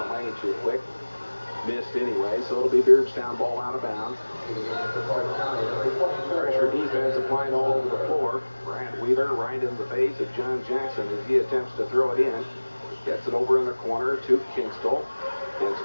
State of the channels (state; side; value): inverted; both; correlation -1.00